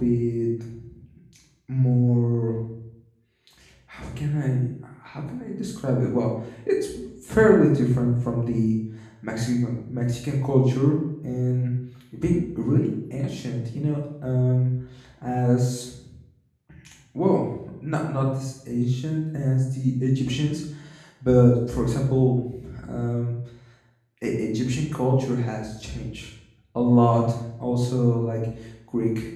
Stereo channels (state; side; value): identical; both; correlation 1.00